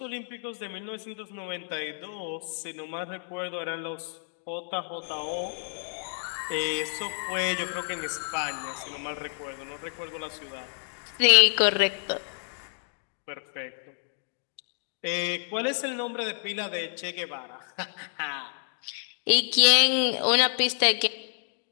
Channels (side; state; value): right; silent; digital silence